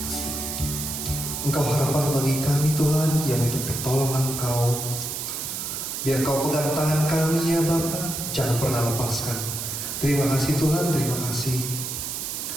Engkau harapan bagi kami Tuhan yang untuk pertolongan Engkau. Biar Engkau pegang tangan kami ya Bapa, jangan pernah lepaskan. Terima kasih Tuhan, terima kasih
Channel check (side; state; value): right; noise; hiss, 5 dB below the sound